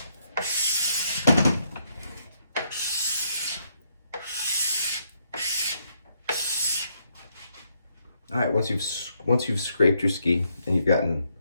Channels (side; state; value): both; inverted; correlation -0.74